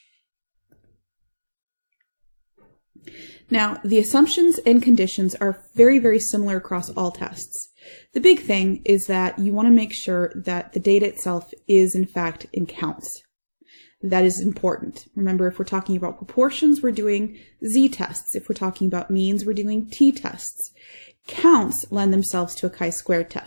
Now, the assumptions and conditions are very, very similar across all tests. The big thing is that you want to make sure that the data itself is, in fact, in counts. That is important. Remember, if we're talking about proportions, we're doing z-tests. If we're talking about means, we're doing t-tests. Counts lend themselves to a chi-squared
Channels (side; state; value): both; inverted; correlation -1.00